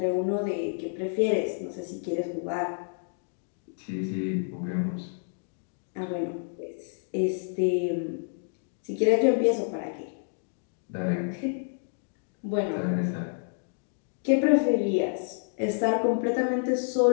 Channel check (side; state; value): right; silent; digital silence